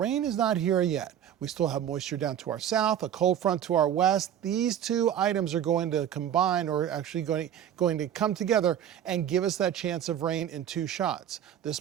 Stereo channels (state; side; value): quieter; left; 9.9 dB